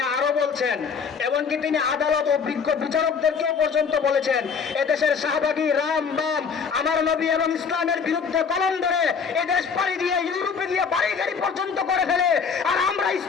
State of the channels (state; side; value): quieter; right; 6.0 dB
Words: আরো বলছেন, এমনকি তিনি আদালত ও বিজ্ঞ বিচারকদেরকেও পর্যন্ত বলেছেন, এদেশের শাহবাগী রাম বাম আমার নবী এবং ইসলামের বিরুদ্ধে কলম ধরে এদেশ পাড়ি দিয়ে ইউরোপে গিয়ে বাড়ি পর্যন্ত করে ফেলে, আর আমরা